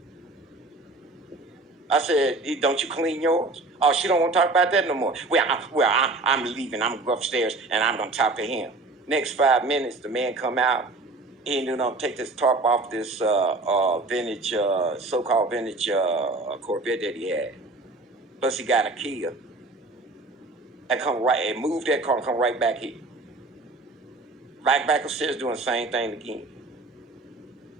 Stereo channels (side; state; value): left; quieter; 3.2 dB